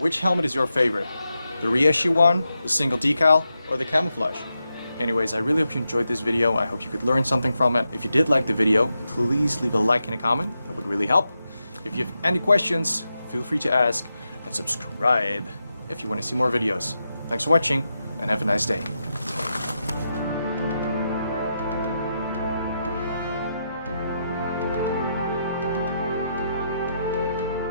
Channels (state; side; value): inverted; both; correlation -0.86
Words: helmet is your favorite? The reissue one, the single decal, or the camouflage? Anyways, I really hope you enjoyed this video. I hope you could learn something from it. If you did like the video, please leave a like and a comment. That would really help. If you have any questions, feel free to ask, and subscribe if you want to see more videos. Thanks for watching, and have a nice day.